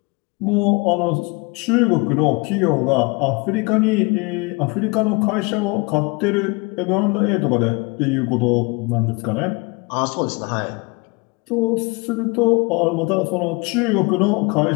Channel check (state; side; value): quieter; right; 28.1 dB